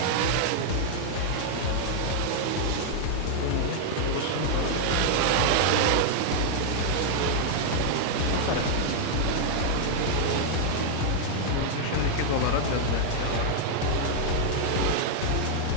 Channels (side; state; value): both; different; correlation -0.01